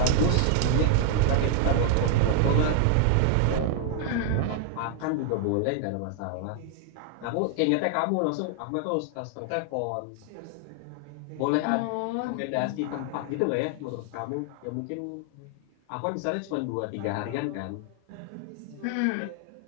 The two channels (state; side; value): different; both; correlation 0.00